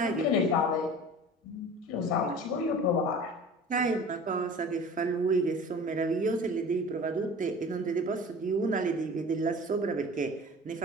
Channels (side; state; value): both; normal; correlation 0.40